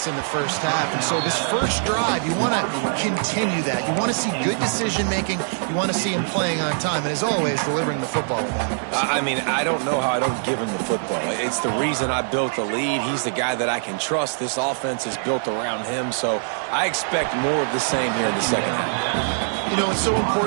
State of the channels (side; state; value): left; silent; digital silence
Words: in the first half. And so this first drive, you want to continue that. You want to see good decision-making. You want to see him playing on time. And as always, delivering the football with accuracy. I mean, I don't know how I don't give him the football. It's the reason I built the lead. He's the guy that I can trust. This offense is built around him. So I expect more of the same here in the second half. You know, it's so